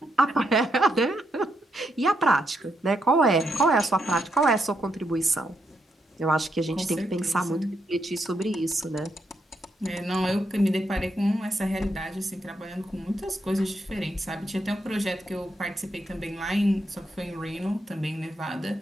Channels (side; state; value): both; normal; correlation 0.80